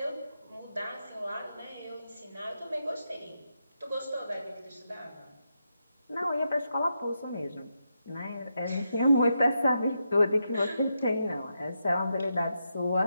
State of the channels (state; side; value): inverted; both; correlation -0.84